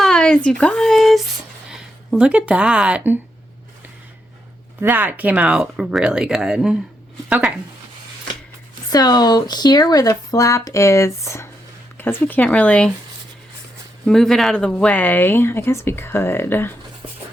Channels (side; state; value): both; normal; correlation 0.81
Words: you guys, look at that. That came out really good. Okay, so here where the flap is, because we can't really move it out of the way, I guess we could.